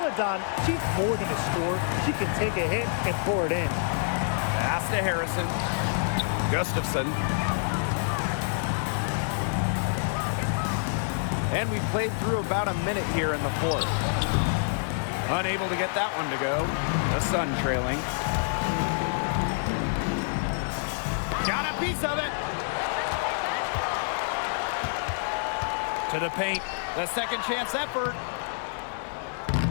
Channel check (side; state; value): right; silent; digital silence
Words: she's more than a scorer. She can take a hit and pour it in. Pass to Harrison. Gustafson. And we played through about a minute here in the fourth. Unable to get that one to go. The Sun trailing. Got a piece of it. To the paint. The second chance effort.